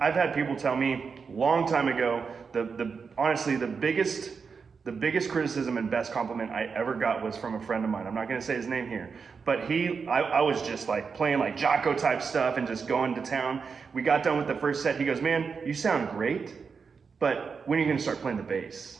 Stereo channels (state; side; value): quieter; left; 5.5 dB